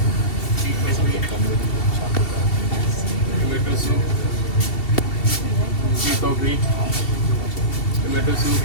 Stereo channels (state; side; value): late; right; 2.7 ms